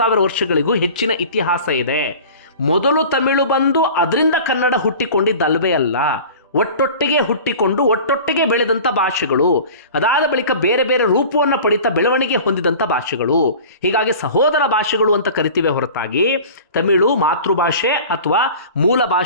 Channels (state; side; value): inverted; both; correlation -0.40